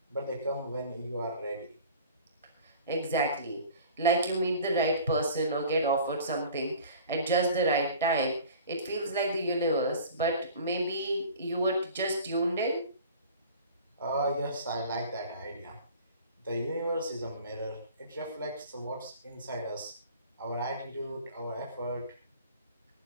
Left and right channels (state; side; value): inverted; both; correlation -0.44